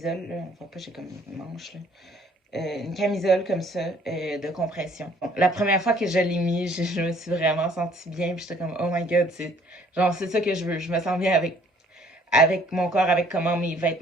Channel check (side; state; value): both; normal; correlation 0.59